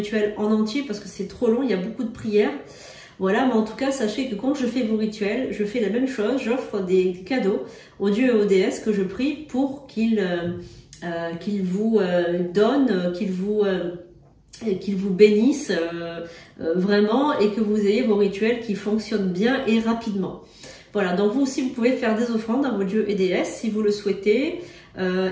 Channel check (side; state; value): both; identical; correlation 1.00